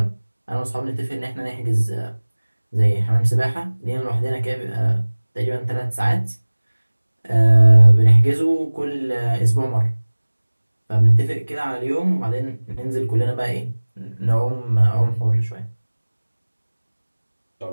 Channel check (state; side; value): inverted; both; correlation -1.00